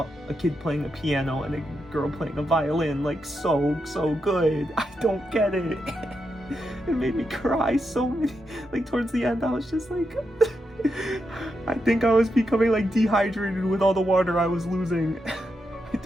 a kid playing a piano and a girl playing a violin, like so good. I don't get it. It made me cry so many, like towards the end I was just like I think I was becoming like dehydrated with all the water I was losing. I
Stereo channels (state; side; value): normal; both; correlation 0.85